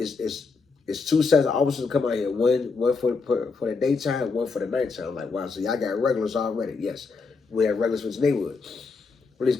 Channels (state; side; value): quieter; right; 4.5 dB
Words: 2 sets of officers come out here. One for the daytime, one for the nighttime. I'm like, wow, so y'all got regulars already. Yes, we have regulars for this neighborhood. Police